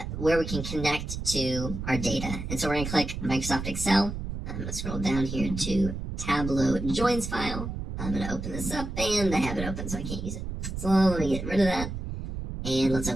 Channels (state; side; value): noise; right; rumble, 6 dB below the sound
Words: where we can connect to our data. And so we're going to click Microsoft Excel. I'm going to scroll down here to Tableau joins file. I'm going to open this up, and I have it open, so I can't use it. So let me get rid of that. And let's